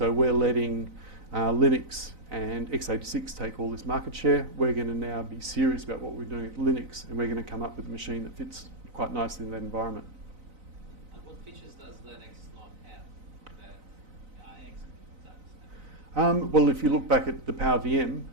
we're letting Linux and x86 take all this market share. We're going to now be serious about what we're doing with Linux, and we're going to come up with a machine that fits quite nicely in that environment. And what features does Linux not have that IX does? Well, if you look back at the PowerVM,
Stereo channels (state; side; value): late; left; 4.0 ms